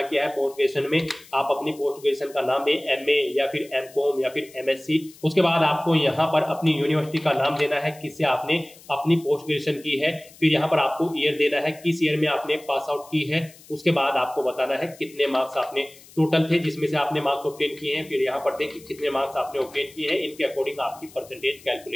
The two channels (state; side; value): noise; left; hiss, 22 dB below the sound